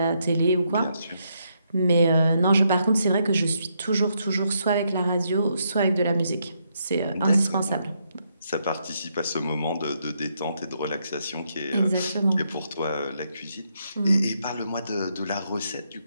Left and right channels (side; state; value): both; inverted; correlation -0.77